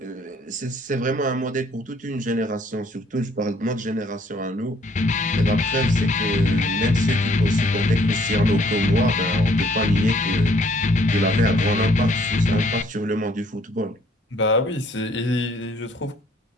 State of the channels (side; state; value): both; normal; correlation 0.63